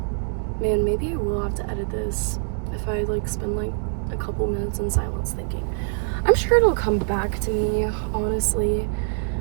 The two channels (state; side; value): silent; left; 62 dB below the other